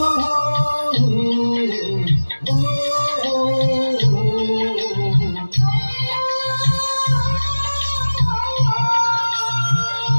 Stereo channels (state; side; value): inverted; both; correlation -1.00